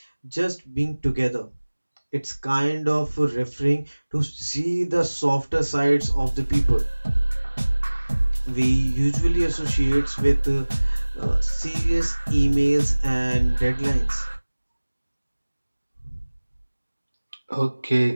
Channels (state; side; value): inverted; both; correlation -1.00